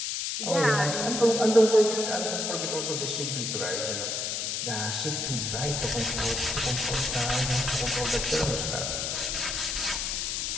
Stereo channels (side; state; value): left; noise; hiss, 1 dB below the sound